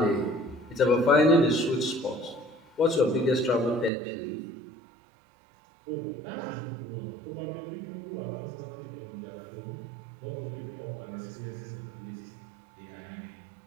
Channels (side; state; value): left; drops out; at 3.9 s